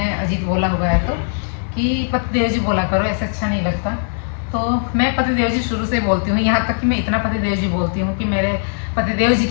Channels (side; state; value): right; silent; digital silence